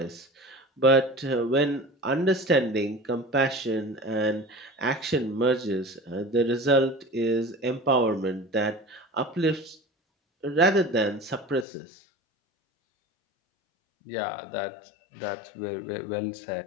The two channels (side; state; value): right; drops out; at 11.7 s